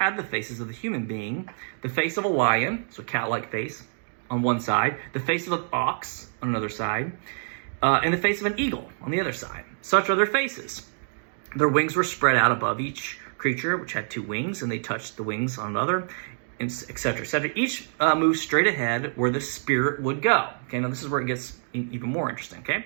the faces of the human being, the face of a lion, so cat-like face, on one side, the face of an ox on another side, and the face of an eagle on the other side. Such are their faces. Their wings were spread out above each creature, which had two wings, and they touched the wings on another, et cetera, et cetera. Each moved straight ahead where the spirit would go. Okay, now this is where it gets even more interesting, okay?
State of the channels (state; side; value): silent; left; digital silence